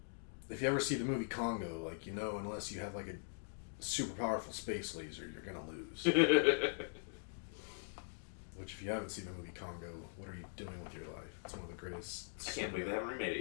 if you ever see the movie Congo, like, you know, unless you have, like, a super powerful space laser, you're gonna lose. Which, if you haven't seen the movie Congo, what are you doing with your life? It's one of the greatest... I can't believe they haven't remade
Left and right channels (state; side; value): silent; right; digital silence